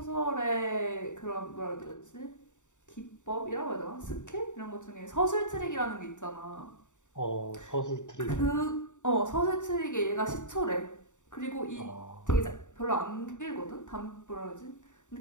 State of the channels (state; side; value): late; right; 0.85 ms